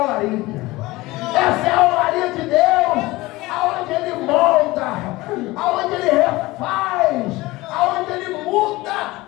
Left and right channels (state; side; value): quieter; right; 20.1 dB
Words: olaria. Essa é a olaria de Deus, aonde Ele molda, aonde Ele refaz, aonde Ele muda